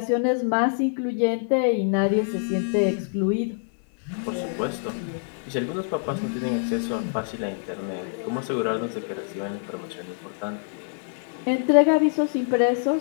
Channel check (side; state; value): right; silent; digital silence